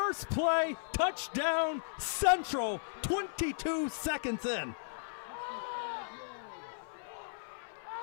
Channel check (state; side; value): silent; right; 54 dB below the other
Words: play, touchdown, Central, 22 seconds in.